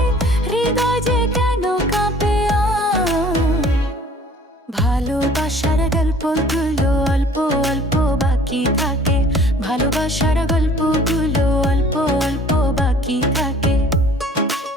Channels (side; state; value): both; normal; correlation 0.52